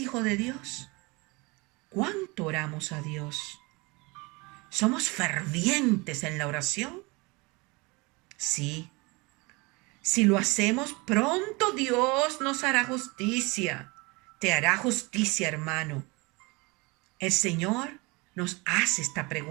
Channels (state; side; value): quieter; left; 26.1 dB